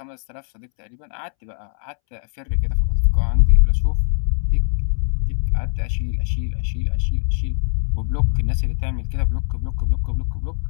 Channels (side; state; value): right; silent; 65 dB below the other